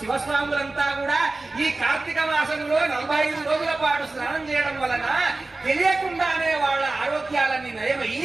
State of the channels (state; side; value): quieter; left; 3.2 dB